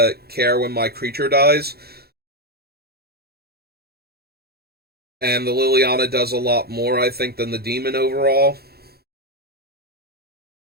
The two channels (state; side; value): late; left; 0.46 ms